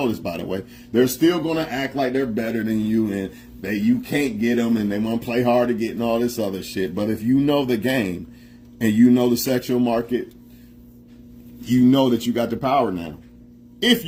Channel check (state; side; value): identical; both; correlation 1.00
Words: this, by the way. They're still going to act like they're better than you and you can't get them and they want to play hard to get and all this other shit. But if you know the game and you know the sexual market, you know that you got the power now.